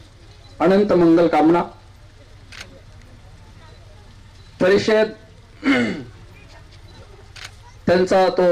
अनंत मंगल कामना. परिषद त्यांचा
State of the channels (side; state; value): both; identical; correlation 1.00